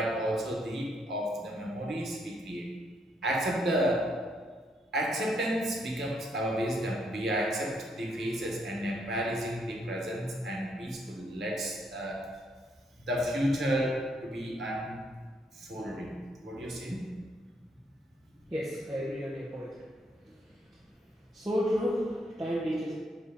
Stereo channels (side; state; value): both; normal; correlation 0.73